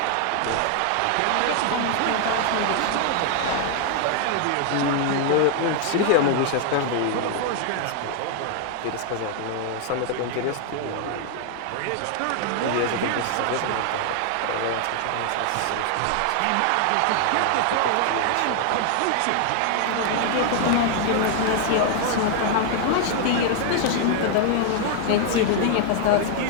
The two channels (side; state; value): both; different; correlation 0.00